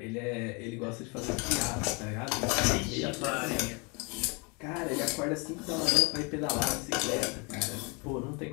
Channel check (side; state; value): right; quieter; 31.1 dB